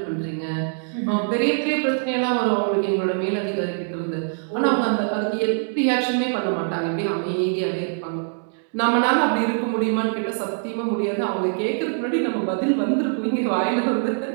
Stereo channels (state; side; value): silent; left; digital silence